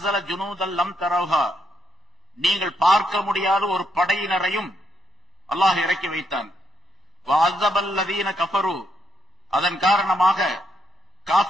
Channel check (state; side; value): normal; both; correlation 0.78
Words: ஜுனூதல் லம் தரவுஹா, நீங்கள் பார்க்க முடியாத ஒரு படையினரையும் அல்லாஹ் இறக்கி வைத்தான். வ அஸபல்லதீன கஃபரு, அதன் காரணமாக